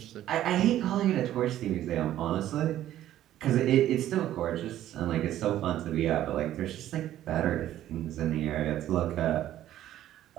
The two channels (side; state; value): left; quieter; 12.7 dB